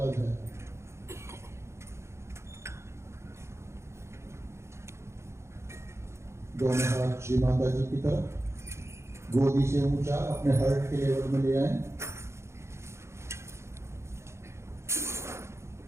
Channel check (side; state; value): left; late; 0.13 ms